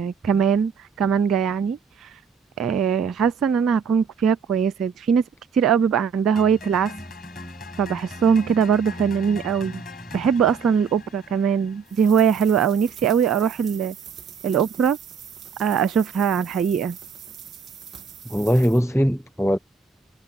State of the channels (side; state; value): left; quieter; 5.9 dB